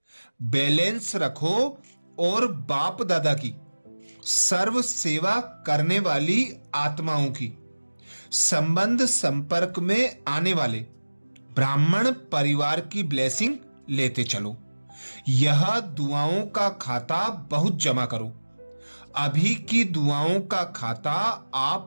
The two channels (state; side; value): inverted; both; correlation -1.00